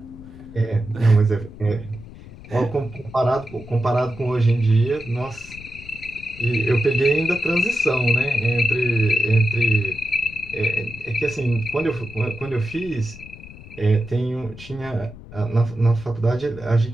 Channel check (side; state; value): left; noise; rumble, 17 dB below the sound